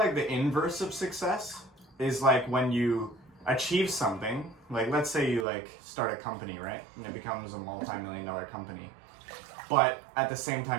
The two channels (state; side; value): drops out; left; at 5.5 s